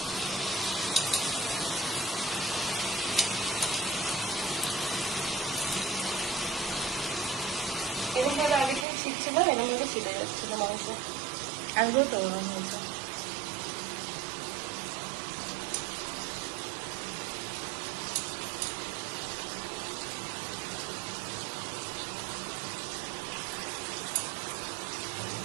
এরকম ভাবে আগে থেকে ছিটছিল, এরকম ভাবে ছিটে যাচ্ছিল মাংস। আগেও তো ওরকম হয়েছে।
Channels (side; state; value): left; drops out; at 8.8 s